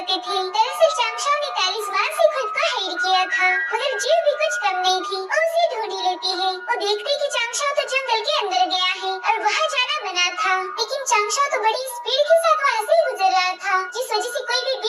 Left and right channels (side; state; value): both; identical; correlation 1.00